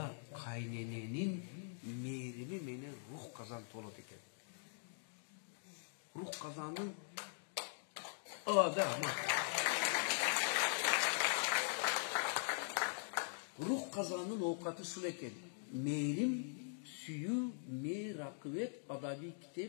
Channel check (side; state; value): right; silent; digital silence